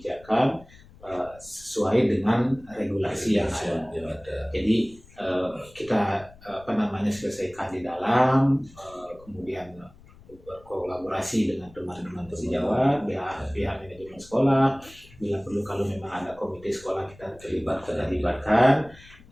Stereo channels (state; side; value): noise; left; rumble, 23 dB below the sound